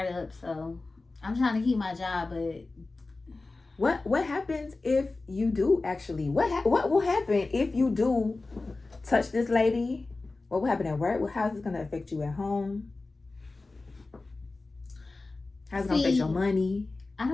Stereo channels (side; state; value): right; quieter; 3.4 dB